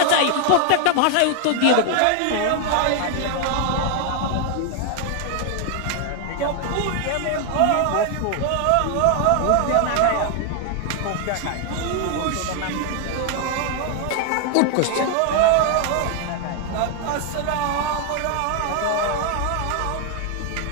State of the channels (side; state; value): both; different; correlation 0.00